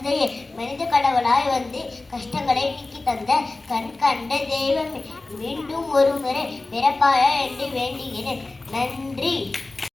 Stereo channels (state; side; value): quieter; right; 3.2 dB